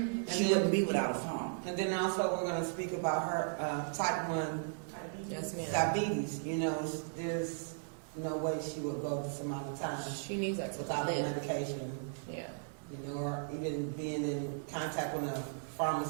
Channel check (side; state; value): left; silent; 54 dB below the other